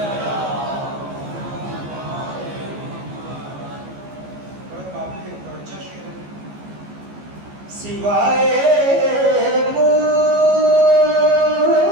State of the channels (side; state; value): left; late; 14 ms